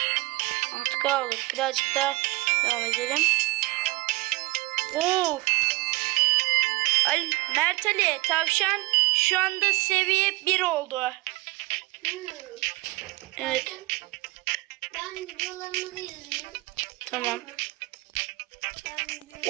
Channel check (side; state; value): left; quieter; 22.0 dB